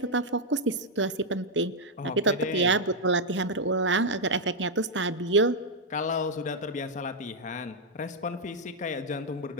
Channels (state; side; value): normal; both; correlation -0.02